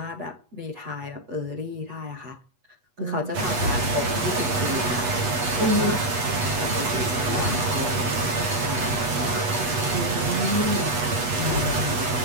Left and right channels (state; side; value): late; left; 8.2 ms